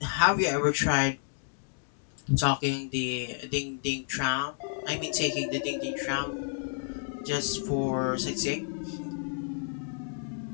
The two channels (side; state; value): right; silent; digital silence